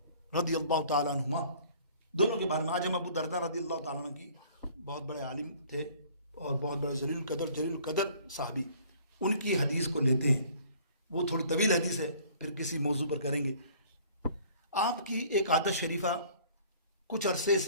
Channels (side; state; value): both; inverted; correlation -0.53